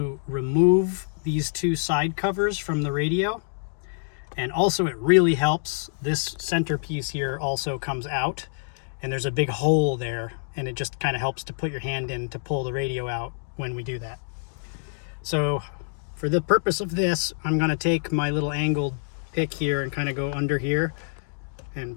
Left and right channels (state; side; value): silent; right; digital silence